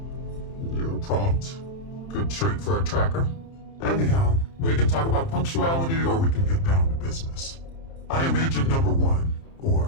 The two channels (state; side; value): late; right; 30 ms